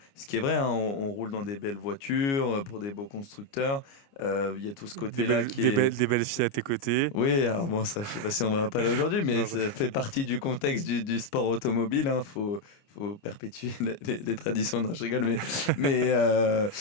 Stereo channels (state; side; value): late; right; 29 ms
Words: ce qui est vrai, hein, on roule dans des belles voitures pour des beaux constructeurs. Il y a tout ce côté-là Des belles filles à tes côtés. Oui, alors bon, ça, je sais pas si on va pas là aujourd'hui, mais ça fait partie du contexte du sport automobile. Hein, faut perpétuer les traditions. Non, je rigole,